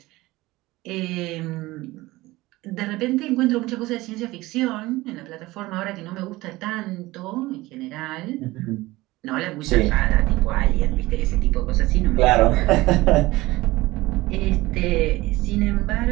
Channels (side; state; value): left; quieter; 19.4 dB